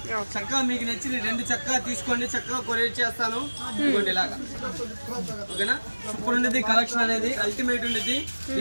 చక్కగా మీకు నచ్చిన 2 చక్కగా తీసుకోండి, చక్కగా కొరియర్ చేస్తాను. ఇదిగోండి ఇలాగా. ఓకేనా. సూపర్ ఉండేది కలెక్షన్ అనేది, అల్టిమేట్ ఉండేది.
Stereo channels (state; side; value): inverted; both; correlation -1.00